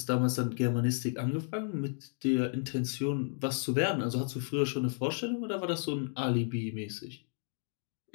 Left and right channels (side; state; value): right; silent; 56 dB below the other